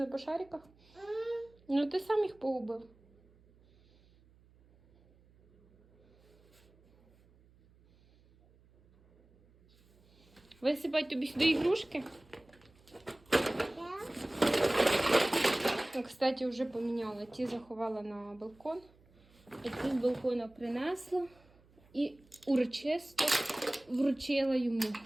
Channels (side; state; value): right; noise; hum, 29 dB below the sound